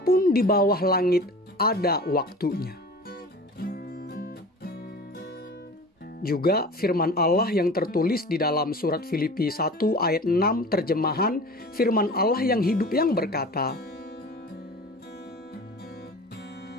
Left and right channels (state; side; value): normal; both; correlation 0.38